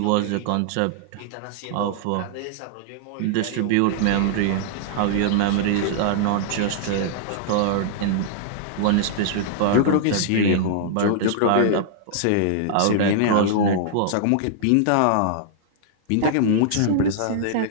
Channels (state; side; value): different; both; correlation -0.01